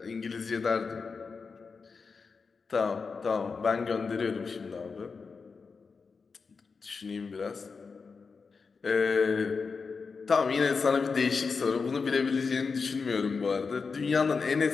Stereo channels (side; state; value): right; quieter; 4.9 dB